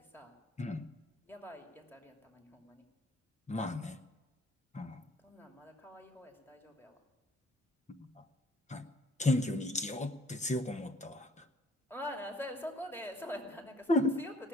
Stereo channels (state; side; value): normal; both; correlation 0.57